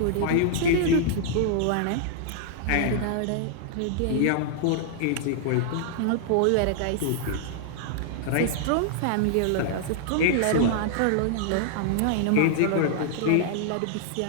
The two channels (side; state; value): both; different; correlation -0.01